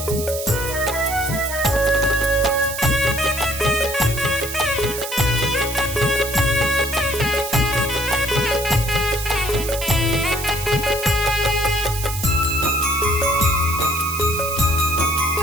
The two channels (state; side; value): noise; right; hiss, 7 dB below the sound